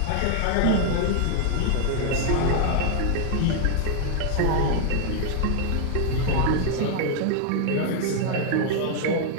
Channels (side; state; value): both; different; correlation 0.00